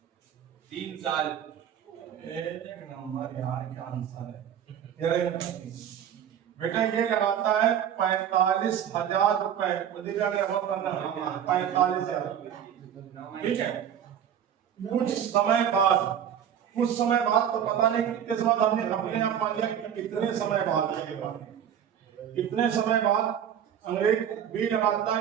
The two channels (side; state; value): left; quieter; 9.3 dB